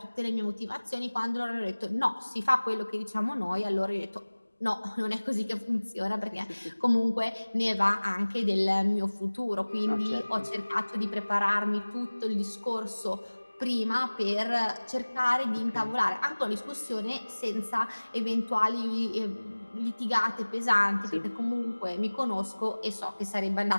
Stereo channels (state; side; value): inverted; both; correlation -1.00